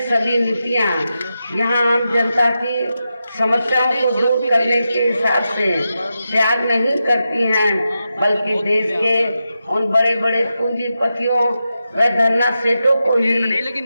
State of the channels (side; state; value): both; inverted; correlation -0.89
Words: सभी नीतियां यहाँ आम जनता की समस्याओं को दूर करने के हिसाब से त्याग नहीं करती हैं, बल्कि देश के उन बड़े बड़े पूंजीपतियों व धरना सेठों को